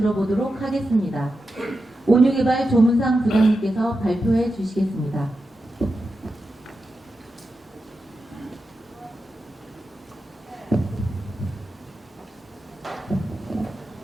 하겠습니다. 온유개발 조문상 부장님께서 발표해 주시겠습니다.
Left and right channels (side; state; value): both; normal; correlation 0.89